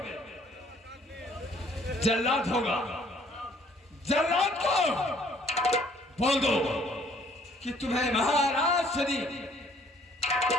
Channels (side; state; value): both; normal; correlation 0.61